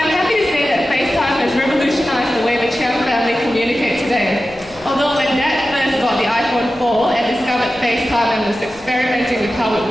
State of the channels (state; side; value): noise; left; rumble, 24 dB below the sound